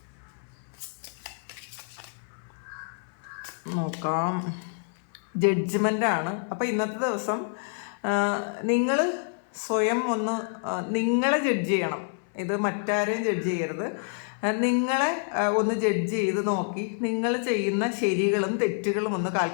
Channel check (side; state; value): right; silent; 60 dB below the other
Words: നോക്കാം, ജഡ്ജ്മെൻ്റാണ്. അപ്പോൾ ഇന്നത്തെ ദിവസം നിങ്ങൾ സ്വയം ഒന്ന് നിങ്ങളെ ജഡ്ജ് ചെയ്യണം. ഇത് മറ്റാരെയും ജഡ്ജ് ചെയ്യരുത്. നിങ്ങളെ ഒന്ന് ജഡ്ജ് ചെയ്ത് നോക്കി നിങ്ങൾ ചെയ്യുന്ന ശരികളും തെറ്റുകളും ഒന്ന്